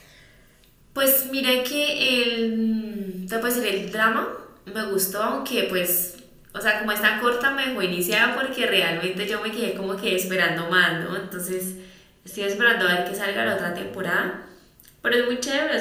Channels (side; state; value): both; identical; correlation 1.00